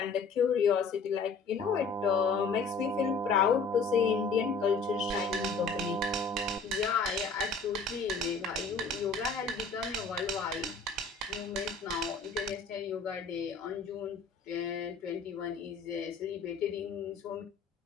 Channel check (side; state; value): right; quieter; 4.5 dB